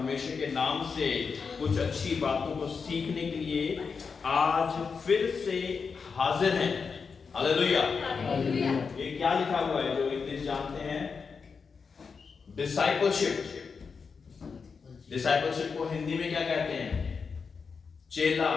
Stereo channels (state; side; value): quieter; right; 5.4 dB